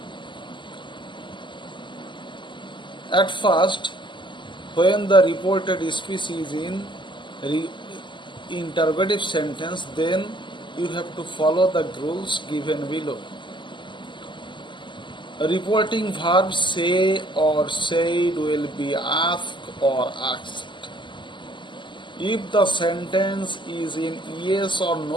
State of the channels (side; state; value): right; late; 0.23 ms